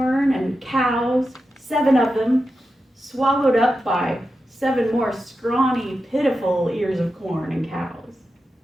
and cows, 7 of them, swallowed up by 7 more scrawny, pitiful ears of corn and cows.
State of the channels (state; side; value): normal; both; correlation 0.90